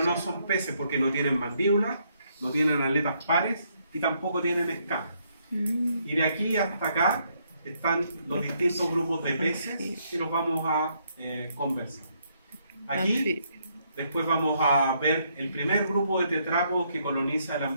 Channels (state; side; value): inverted; both; correlation -0.73